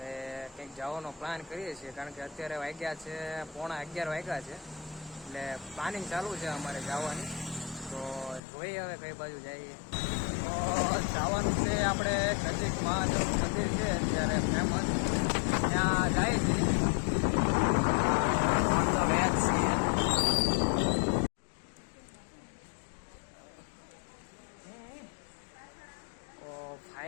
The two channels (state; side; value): drops out; right; at 8.4 s